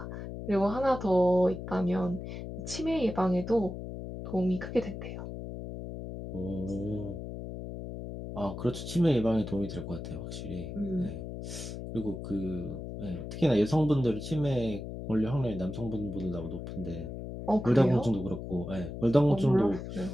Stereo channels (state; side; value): noise; left; hum, 8 dB below the sound